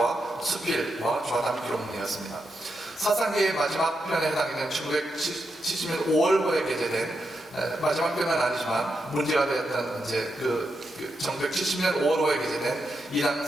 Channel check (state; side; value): normal; both; correlation 0.85